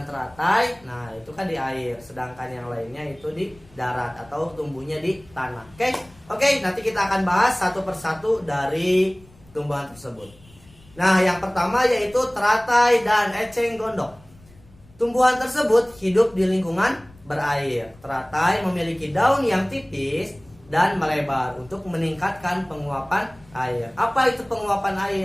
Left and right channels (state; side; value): noise; left; rumble, 26 dB below the sound